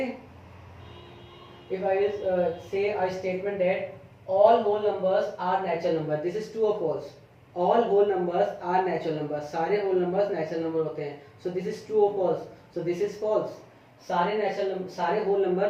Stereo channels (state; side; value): identical; both; correlation 1.00